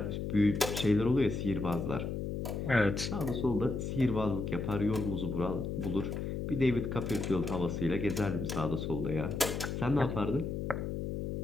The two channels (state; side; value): noise; left; hum, 3 dB below the sound